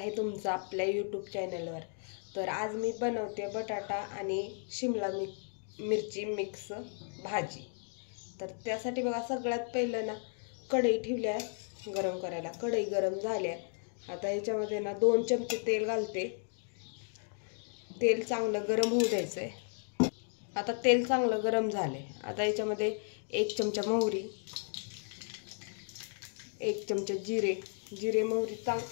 तुमचं आपल्या यूट्यूब चॅनलवर। तर आज मी बनवते बटाटा आणि शिमला मिरची मिक्स भाजी। तर त्यासाठी बघा सगळ्यात पहिलं ना कढई ठेवली आहे गरम करायला। कढई गरम झाल्या, आता याच्यामध्ये ना 2 चमचे तेल घालते। तेल चांगलं गरम होऊ द्यायचंय। आता तेल चांगलं गरम झाले, आता याच्यामध्ये 1 चमचा मोहरी, 1 चमचा जिरे मोहरी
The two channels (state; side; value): silent; right; 55 dB below the other